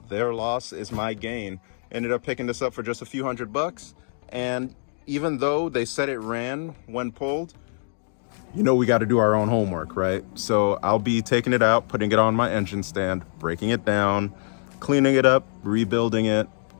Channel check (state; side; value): silent; right; digital silence